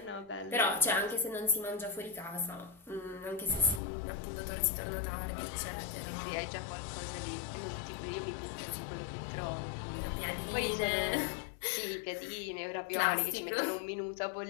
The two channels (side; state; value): right; drops out; at 3.8 s